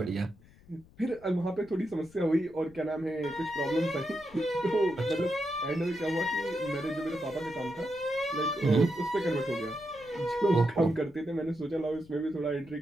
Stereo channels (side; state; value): left; noise; rumble, 25 dB below the sound